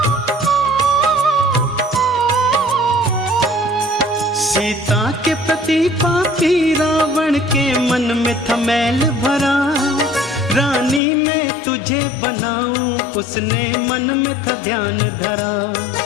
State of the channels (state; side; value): drops out; right; at 11.0 s